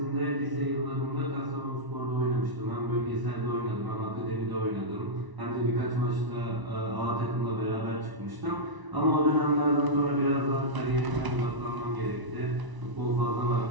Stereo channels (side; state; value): left; late; 1.0 ms